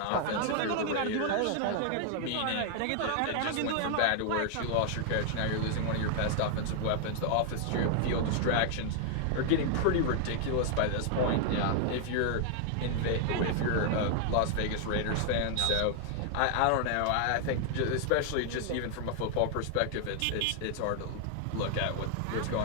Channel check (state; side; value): different; both; correlation 0.00